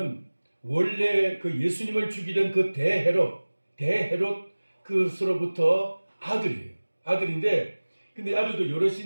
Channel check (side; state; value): both; inverted; correlation -1.00